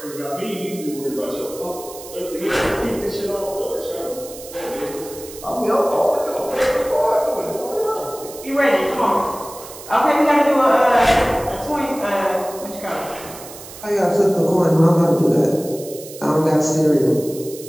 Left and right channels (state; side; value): noise; right; hiss, 15 dB below the sound